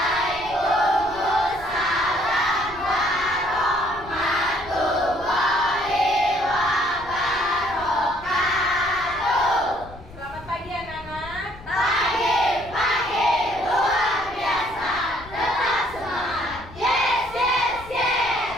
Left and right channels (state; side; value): noise; left; rumble, 18 dB below the sound